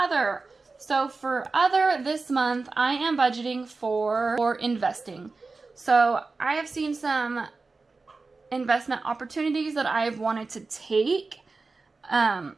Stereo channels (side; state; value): left; quieter; 3.9 dB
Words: So for other this month, I am budgeting for investing. So I have seen some investment opportunities that I've wanted to take.